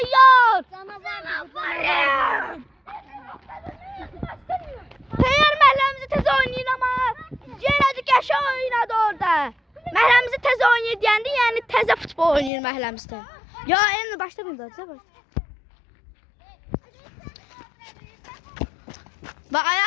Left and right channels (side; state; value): right; drops out; at 12.5 s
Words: Teyyar məhəlləmizi tez oynayın ama yenə də Qəşəng oynadı orada. Məhəlləmizi tez oynayır deyəndə yəni təzə futbol oynayır məhəlləmizdə. Ya en başta burada. Ve